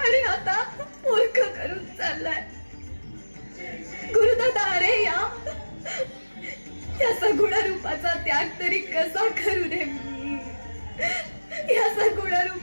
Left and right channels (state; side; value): inverted; both; correlation -1.00